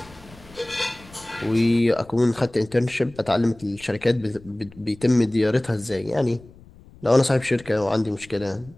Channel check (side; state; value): left; noise; rumble, 23 dB below the sound